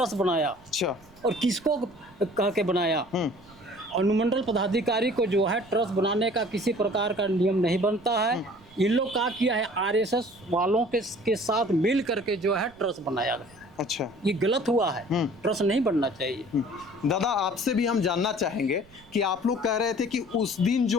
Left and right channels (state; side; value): noise; right; rumble, 28 dB below the sound